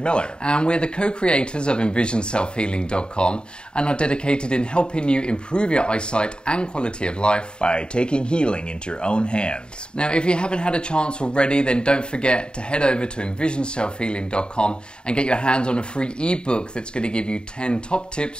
Miller. And we're the co-creators of EnvisionSelfHealing.com and are dedicated in helping you improve your eyesight and quality of life by taking healing into your own hands. Now, if you haven't had a chance already, then don't forget to head over to EnvisionSelfHealing.com and get your hands on a free ebook that's going to give you 10 top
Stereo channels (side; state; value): right; late; 0.050 ms